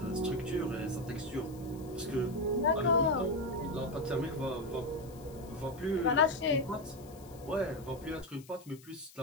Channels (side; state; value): left; noise; hiss, 23 dB below the sound